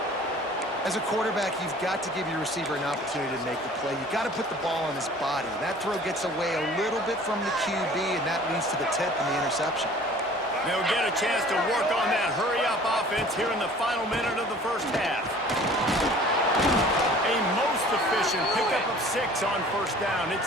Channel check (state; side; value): normal; both; correlation 0.48